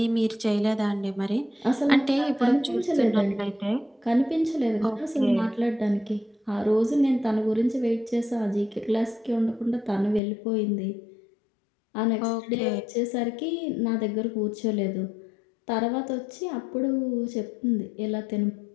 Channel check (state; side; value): drops out; right; at 10.2 s